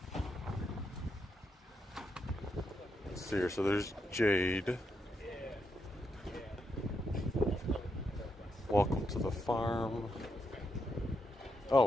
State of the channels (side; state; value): both; normal; correlation 0.81